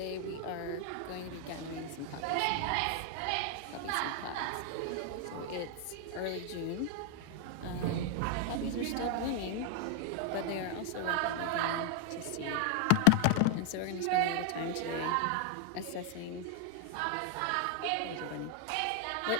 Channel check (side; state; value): both; different; correlation 0.00